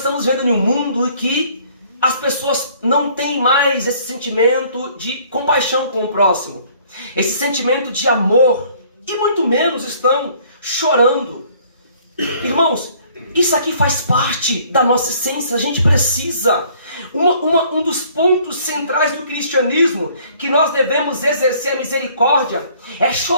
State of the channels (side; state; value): both; inverted; correlation -0.58